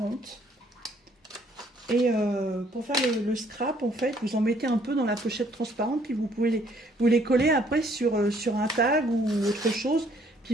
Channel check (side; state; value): both; normal; correlation 0.64